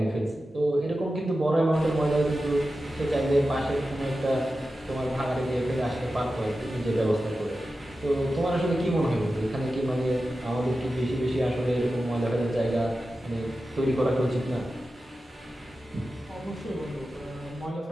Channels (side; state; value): both; normal; correlation 0.93